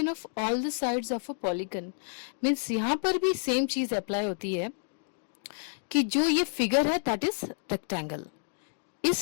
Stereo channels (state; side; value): silent; right; digital silence